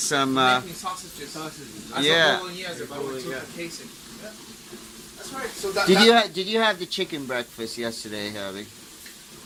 Making sausages. Yeah. Bolognese, but we took the casing. Yeah. That's right. So that, Did you have the chicken breakfast yesterday, Herbie?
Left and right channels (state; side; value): identical; both; correlation 1.00